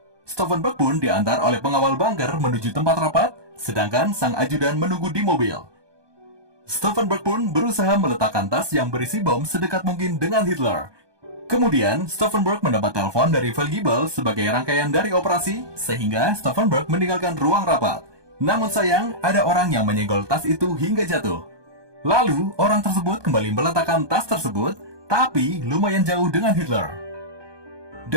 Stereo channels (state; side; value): late; left; 1.2 ms